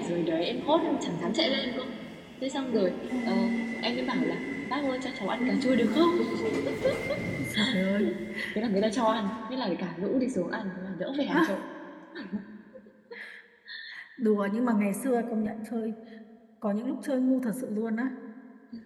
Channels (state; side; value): identical; both; correlation 1.00